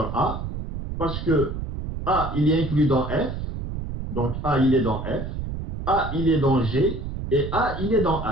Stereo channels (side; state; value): right; noise; rumble, 6 dB below the sound